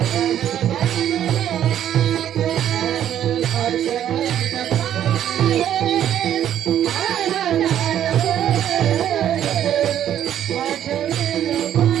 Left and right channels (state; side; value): quieter; left; 10.6 dB